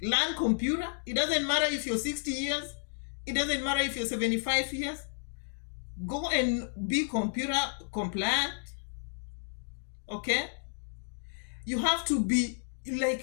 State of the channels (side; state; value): right; silent; digital silence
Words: Learn computer. It doesn't matter if you're 60 years. It doesn't matter if you're 75 years. Go and be computer compliant. Okay? You have to be